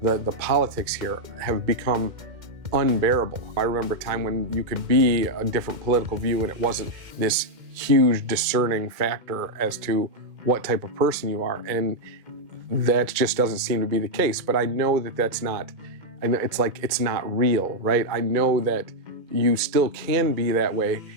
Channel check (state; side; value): late; left; 2.2 ms